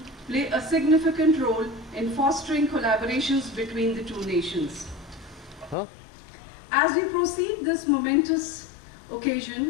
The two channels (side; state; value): right; drops out; at 5.8 s